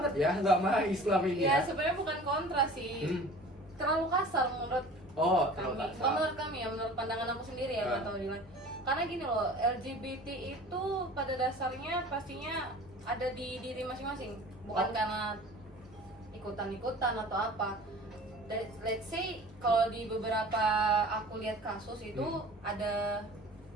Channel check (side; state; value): both; normal; correlation 0.43